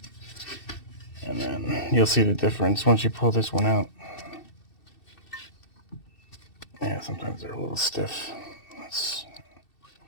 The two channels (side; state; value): right; late; 2.7 ms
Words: and then you'll see the difference once you pull this one out. Yeah, sometimes they're a little stiff.